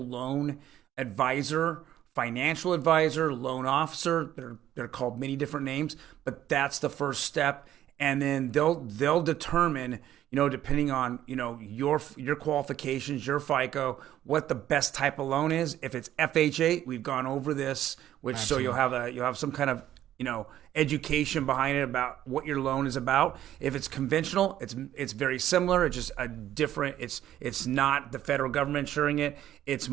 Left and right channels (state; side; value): quieter; left; 12.2 dB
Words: loan advisor, financial advisor, loan officer. They're called many different names, but that's the first step. And then they'll determine, depending on, your qualifications, your FICO, what the best type of loan is. If it's FHA, we've gone over this, which Absolutely. So you'll have some kind of education behind it about what your loan is about. If it's conventional, it's very similar. It's just a different. It's not the federal government insuring it. It's